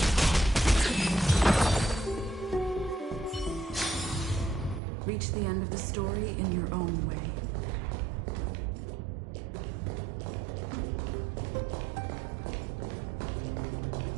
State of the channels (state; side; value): drops out; left; at 4.8 s